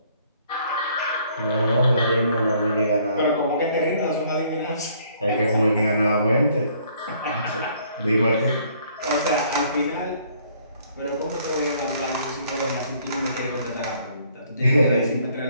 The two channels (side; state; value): both; inverted; correlation -0.63